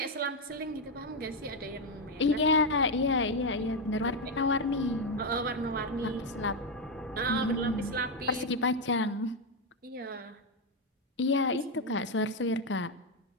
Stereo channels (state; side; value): normal; both; correlation 0.05